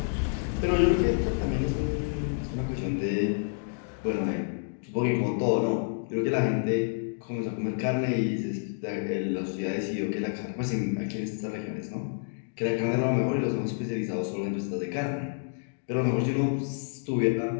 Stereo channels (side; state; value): right; silent; digital silence